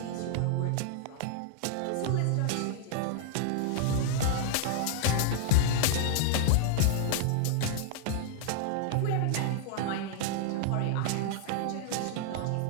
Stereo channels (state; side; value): different; both; correlation 0.00